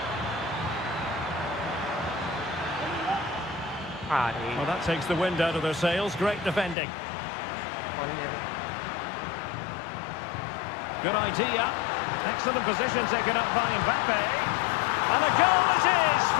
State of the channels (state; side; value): drops out; right; at 6.8 s